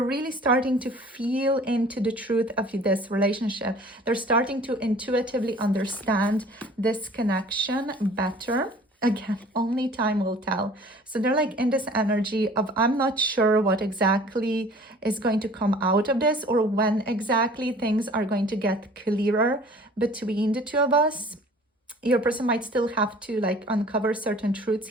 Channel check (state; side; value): normal; both; correlation 0.49